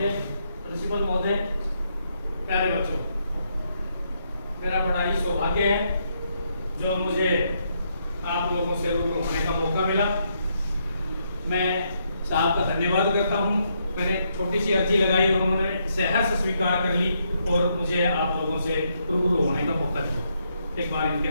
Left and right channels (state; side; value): inverted; both; correlation -0.77